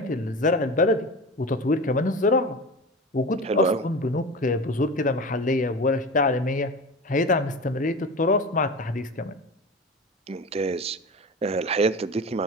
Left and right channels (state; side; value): normal; both; correlation 0.30